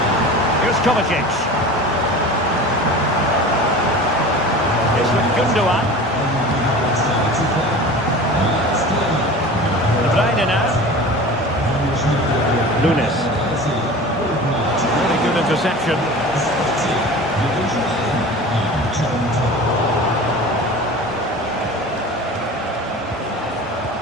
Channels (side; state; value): both; normal; correlation 0.37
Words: Here's Kovacic. It's with Gundogan. De Bruyne now. Nunes. Really good interception.